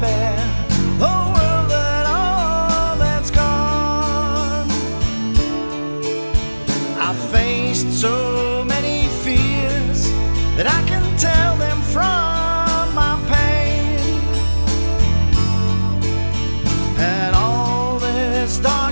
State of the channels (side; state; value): both; inverted; correlation -1.00